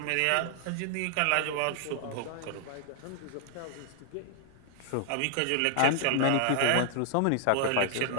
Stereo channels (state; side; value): different; both; correlation 0.00